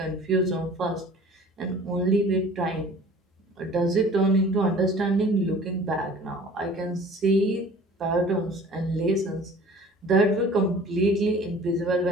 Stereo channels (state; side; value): normal; both; correlation 0.47